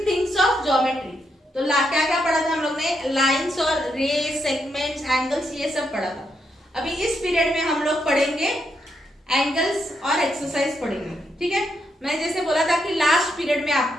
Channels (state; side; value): normal; both; correlation 0.80